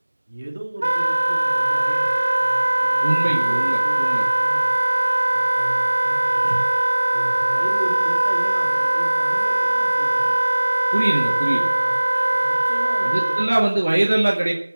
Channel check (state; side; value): inverted; both; correlation -1.00